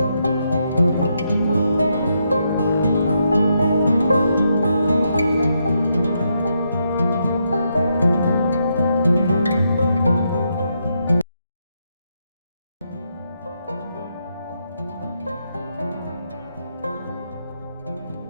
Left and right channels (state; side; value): inverted; both; correlation -0.80